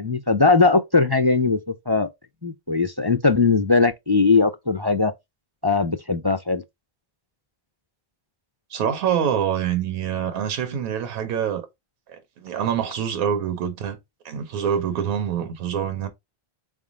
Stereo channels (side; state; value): left; late; 1.1 ms